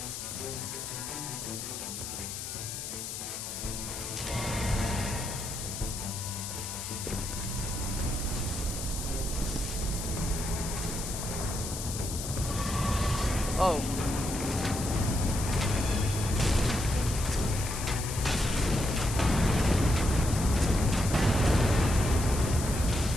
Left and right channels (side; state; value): left; noise; hiss, 7 dB below the sound